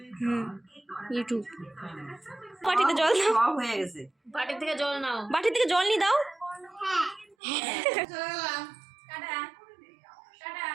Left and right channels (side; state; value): left; drops out; at 7.4 s